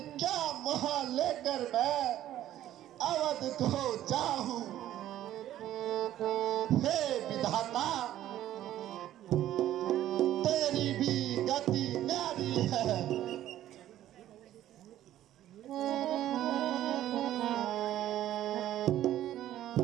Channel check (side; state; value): left; quieter; 12.8 dB